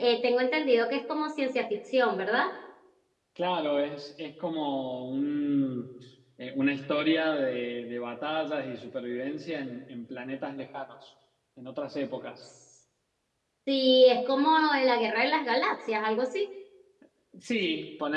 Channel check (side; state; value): both; identical; correlation 1.00